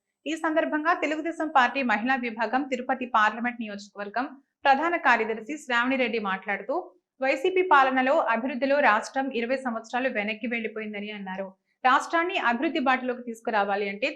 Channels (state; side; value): identical; both; correlation 1.00